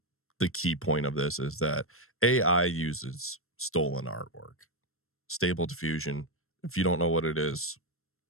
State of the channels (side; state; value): right; late; 0.62 ms